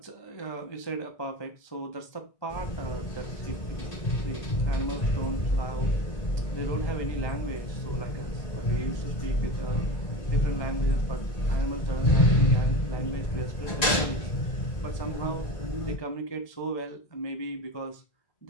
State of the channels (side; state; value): right; late; 1.9 ms